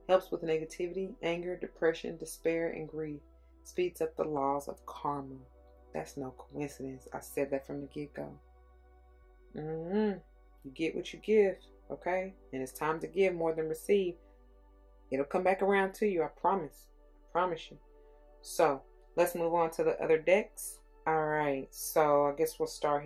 Helps with negativity, anger, depression, despair, and grief. Speeds up the laws of karma. That's no coincidence. I said that from the get-go. You get what you give, okay? And it's time to give more than receive. It'll come back around to you, I promise. I promise you. So, let's move on to the other decks. Alright, so I guess we'll start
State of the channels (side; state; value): both; identical; correlation 1.00